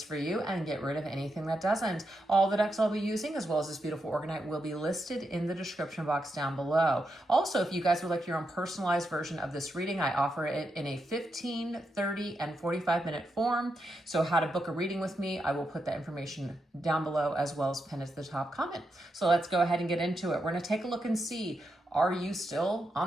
for you and get rid of anything that doesn't. All the decks I'll be using, as well as this beautiful Organite, will be listed in the description box down below. Also, if you guys would like your own personalized version of this reading, I offer it in a 15, 30, and 45-minute form. So how to book a reading with me, I will put that information down below as well as pin it to the top comment. So let's go ahead and get into it. We're going to take a look and see, are you still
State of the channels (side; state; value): both; normal; correlation 0.84